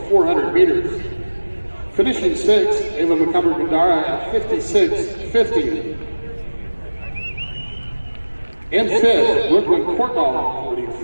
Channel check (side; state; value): both; inverted; correlation -1.00